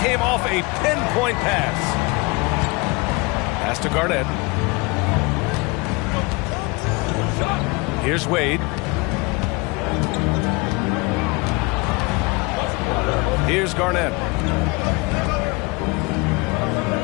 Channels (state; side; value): quieter; right; 26.5 dB